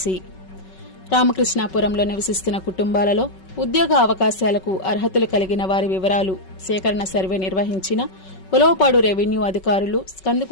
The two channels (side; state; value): right; late; 5.3 ms